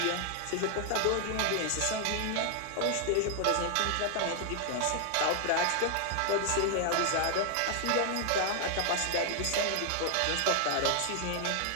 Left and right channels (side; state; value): both; different; correlation 0.00